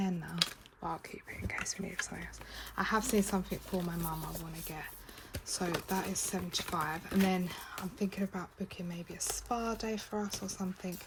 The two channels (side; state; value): both; identical; correlation 1.00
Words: now, but I'll keep it in case we need something else. I have seen something for my mum I want to get. So that is 75. And then I'm thinking about booking maybe a spa day for us or something.